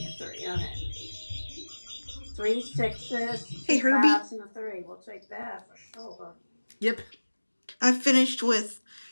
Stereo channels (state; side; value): inverted; both; correlation -1.00